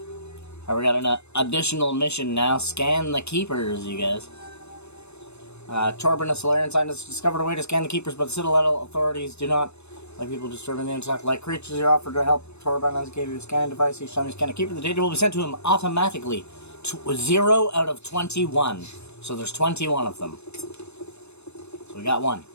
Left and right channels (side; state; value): right; late; 0.81 ms